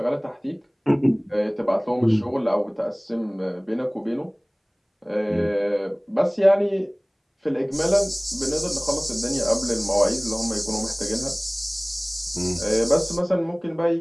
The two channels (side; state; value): both; identical; correlation 1.00